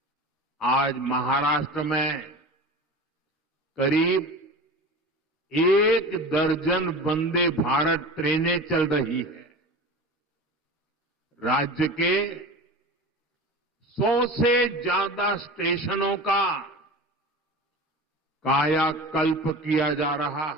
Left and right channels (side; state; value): both; normal; correlation 0.33